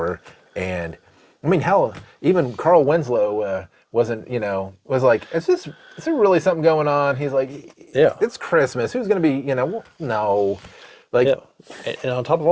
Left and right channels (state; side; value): identical; both; correlation 1.00